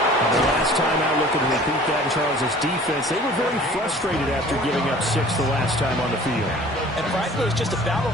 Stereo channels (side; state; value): both; normal; correlation 0.48